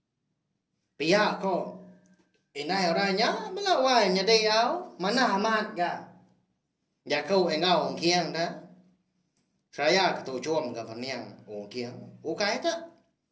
Pihak kok. Indai orangnya melawan nyedai au. Mana amat ga. Ya kau engau kiang dah. Saya ketujuan ke peniang ungkiang. Ukai tak?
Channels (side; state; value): both; identical; correlation 1.00